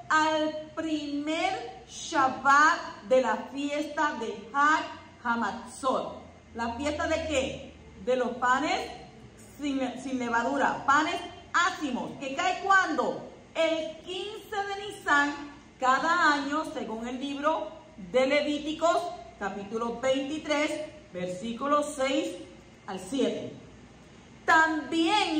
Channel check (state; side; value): identical; both; correlation 1.00